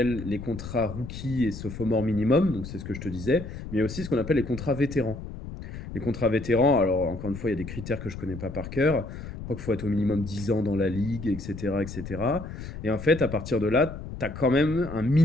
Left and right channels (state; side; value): noise; left; rumble, 10 dB below the sound